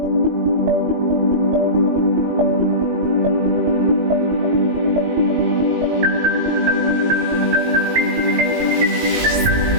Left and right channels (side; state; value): left; late; 19 ms